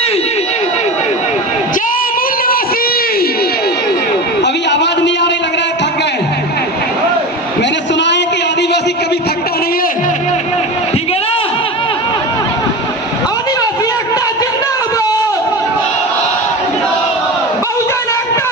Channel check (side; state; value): both; normal; correlation 0.28